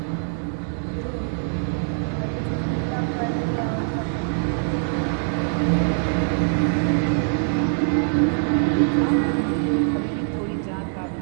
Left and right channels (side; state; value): left; silent; 63 dB below the other